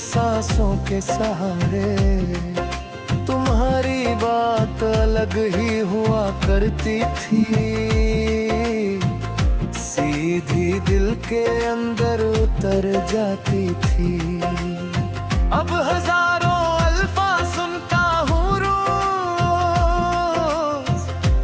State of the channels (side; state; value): both; identical; correlation 1.00